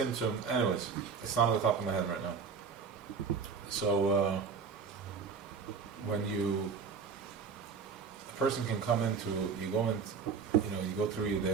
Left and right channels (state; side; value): quieter; left; 5.8 dB